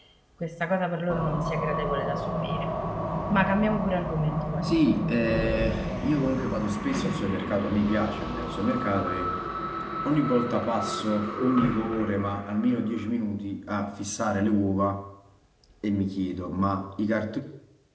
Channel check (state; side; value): identical; both; correlation 1.00